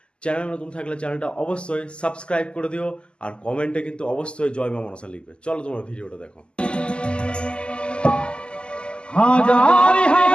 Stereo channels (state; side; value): late; right; 0.050 ms